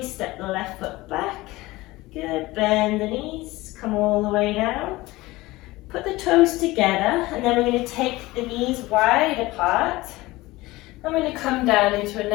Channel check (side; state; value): right; quieter; 19.6 dB